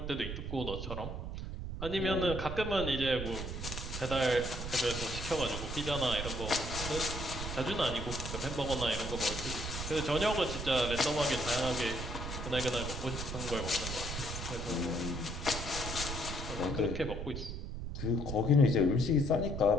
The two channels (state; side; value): noise; right; rumble, 6 dB below the sound